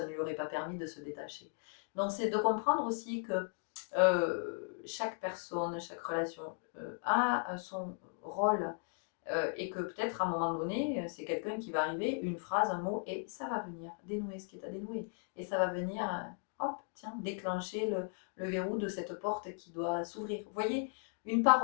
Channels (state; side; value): silent; right; 53 dB below the other